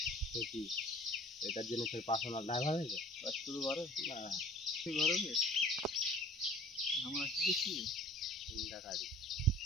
কি এটার জন্য তোর পার্সোনাল ড্রাইভার হয়েছে? শুধু ঘরে না, ঘরে আমরা কি দেখছি, 3টা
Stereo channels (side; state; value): both; normal; correlation 0.49